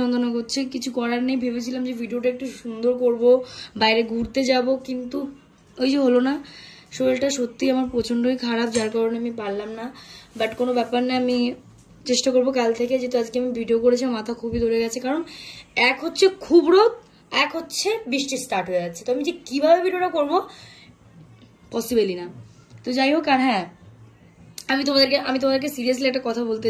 যন্ত্রণা করছে। কিছু করার নেই, ভেবেছিলাম যে ভিডিওটা একটু সুন্দর করব, বাইরে ঘুরতে যাব, কিন্তু ওই যে হলো না। শরীরটা সত্যি আমার প্রচণ্ডই খারাপ, যার কারণে আমি পারলাম না। বাট কোনো ব্যাপার না, আমি চেষ্টা করবো কাল থেকে। যেহেতু আজকে আমি ভিডিও করেছি, মাথা খুবই ধরে গেছে, কারণ এক হচ্ছে খুব রোদ, এক হচ্ছে বৃষ্টি স্টার্ট হয়ে যাচ্ছে। তো আমি যে কীভাবে ভিডিওটা করবো পসিবলই না। তো যাই হোক, আর হ্যাঁ আমি তোমাদেরকে সিরিয়াসলি একটা কথা বলতে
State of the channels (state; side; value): identical; both; correlation 1.00